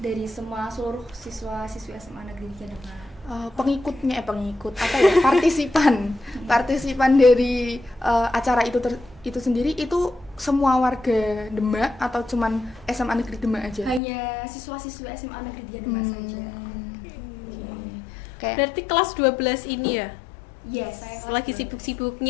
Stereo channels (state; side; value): drops out; right; at 14.0 s